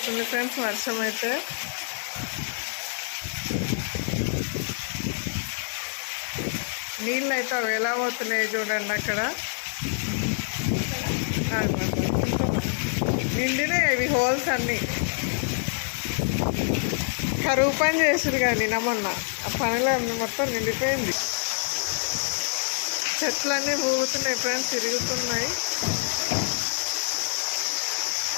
ఫ్రెండ్స్ వర్షం అయితే. నీళ్ళు అయితే అవి ఎలా పోతున్నాయి చూడండి. అక్కడ నిండినాయి ఇవి హోల్స్ అన్నీ. కరువు పని చేసారు కానీ మొన్న ఆ పనిలో మొత్తం నిండిపోయింది. చెట్లన్నీ ఊగుతున్నాయి ఫ్రెండ్స్, తిరుగుతున్నాయి.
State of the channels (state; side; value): silent; right; digital silence